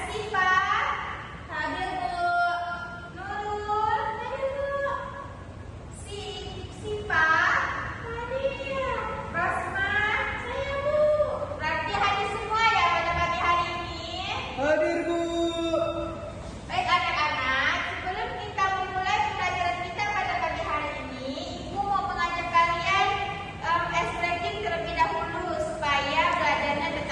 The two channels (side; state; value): both; identical; correlation 1.00